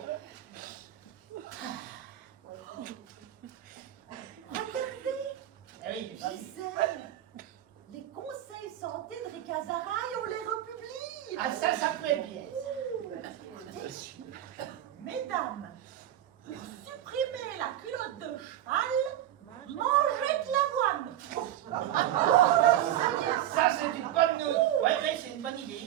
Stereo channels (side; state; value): left; quieter; 12.2 dB